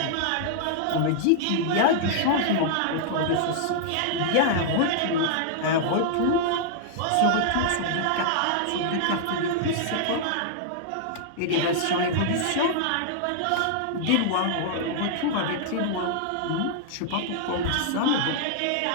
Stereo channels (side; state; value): both; different; correlation -0.01